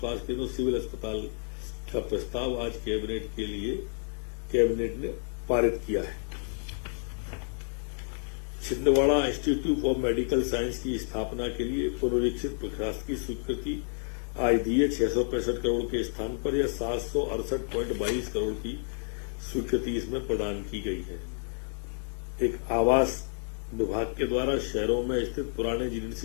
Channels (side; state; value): right; silent; digital silence